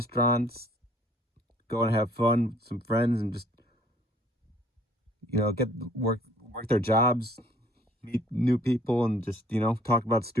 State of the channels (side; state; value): both; normal; correlation 0.58